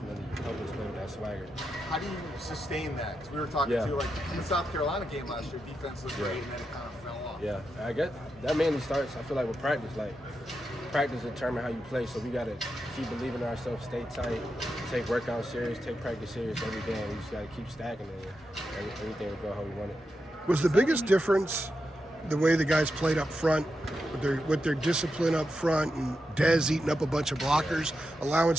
helped us play with that swagger. How do you sustain that? Because we were talking to you in the South Carolina game last year, defense was great and then it kind of fell off. Yeah, I guess that mainly starts, I feel like, with practice. Practice determine how you play, so we got to keep believing in ourselves, stay tight, take workout serious, take practice serious every day, and we just got to keep stacking it, and everything will go how we want it. Was the biggest difference the way the guys played up front, with their discipline up front, and Dez eating up a bunch of blockers, allowing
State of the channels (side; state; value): both; normal; correlation 0.87